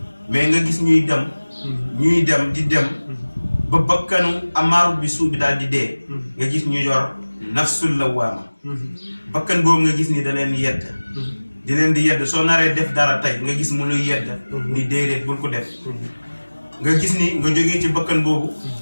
mais nga gis ñuy dem di dem ba bakkanu amaaru bi suu bi daal di dee nga gis ñu yor nafsul lawaama bakkan boobu nga gis ni da leen yedd di leen di yedd soo naree def dara tey nga gis mu luy yedd ni déedéet bul ko def nga gis ni nga jógee ci bakkan boobu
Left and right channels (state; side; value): inverted; both; correlation -1.00